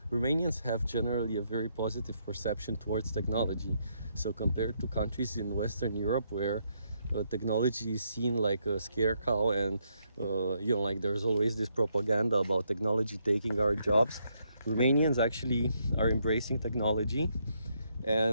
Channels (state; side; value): inverted; both; correlation -0.76